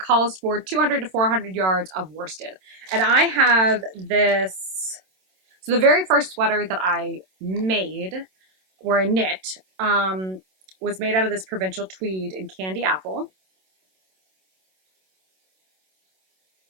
for 200 to 400 yards of worsted. And I have this. So the very first sweater that I made, or I knit, was made out of this provincial tweed in Candy Apple.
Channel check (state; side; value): late; left; 27 ms